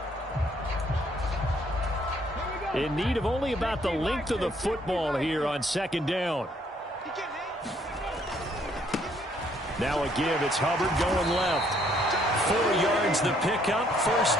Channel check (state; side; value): normal; both; correlation 0.66